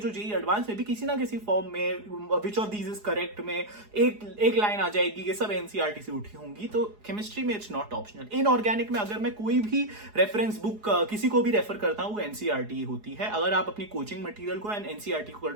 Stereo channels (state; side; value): late; left; 4.8 ms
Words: जेई एडवांस में भी किसी ना किसी फॉर्म में, which of these is correct में एक लाइन आ जाएगी, ये सब एनसीईआरटी से उठी होंगी। तो केमिस्ट्री में इट्स नॉट ऑप्शनल। इनऑर्गेनिक में अगर मैं कोई भी रेफरेंस बुक किसी को भी रेफर करता हूं, वो एनसीईआरटी होती है। अगर आप अपनी कोचिंग मटेरियल को एनसीईआरटी को कर